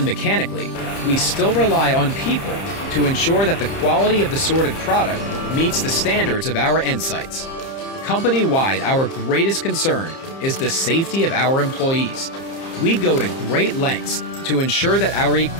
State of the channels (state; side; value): late; right; 30 ms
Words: mechanically, we still rely on people to ensure that the quality of the sorted product meets the standards of our end sites. Company-wide, our greatest concern is the safety of our employees. We go to great lengths to ensure that our